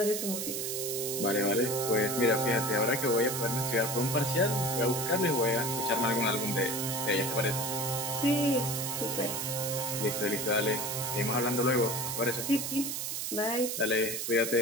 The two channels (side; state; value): right; noise; hiss, 3 dB below the sound